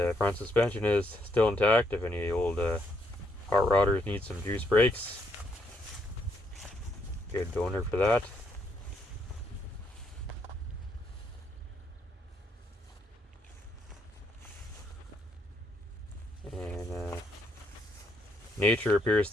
front suspension is still intact. If any old hot rodders need some juice brakes, good donor for that. And nature appears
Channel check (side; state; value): both; normal; correlation 0.74